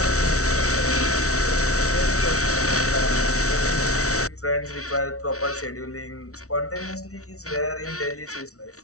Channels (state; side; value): late; right; 0.64 ms